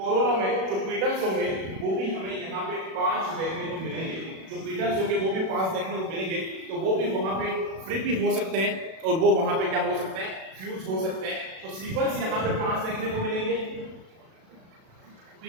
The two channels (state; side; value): late; left; 37 ms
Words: में जो पीटल्स होंगे वो भी हमें यहाँ पे 5 देखने को मिलेंगे। जो पीटल्स होंगे वो भी 5 देखने को मिलेंगे। तो वो भी वहां पे फ्री भी हो सकते हैं और वो वहां पे क्या हो सकते हैं फ्यूज हो सकते हैं। तो सिपल्स यहाँ पे 5 देखने को मिलेंगे,